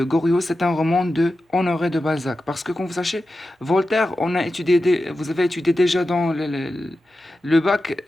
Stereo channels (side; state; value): both; normal; correlation 0.92